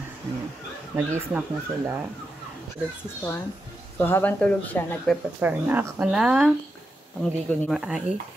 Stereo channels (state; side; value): normal; both; correlation 0.87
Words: Nag-i-snack na sila. Tulog si Storm. So, habang tulog siya, nagpe-prepare na ako na pangligo ni Maai.